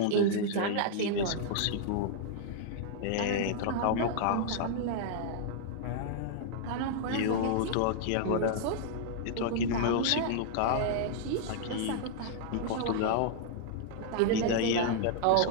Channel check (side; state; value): both; different; correlation -0.01